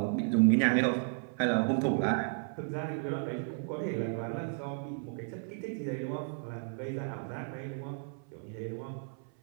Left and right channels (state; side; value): silent; left; 55 dB below the other